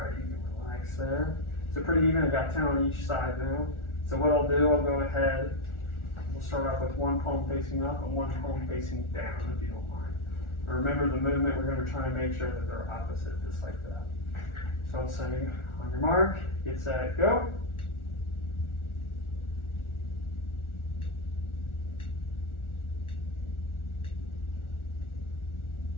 you can relax there. So pretty even, I've got 10 on each side now. So what I'll do, I'll go ahead, we'll start off with one palm facing up and one palm facing down, if you don't mind. And remember the movement, we're going to try and make sure that they're opposite, just like that. So I'll say, on your mark, get set, go.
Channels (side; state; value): right; late; 1.4 ms